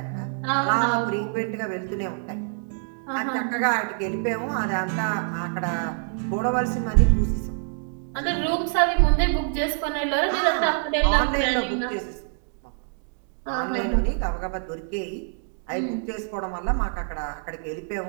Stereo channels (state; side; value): silent; left; 61 dB below the other